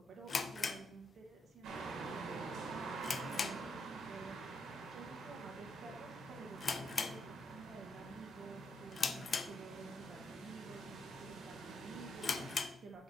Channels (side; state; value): both; normal; correlation 0.80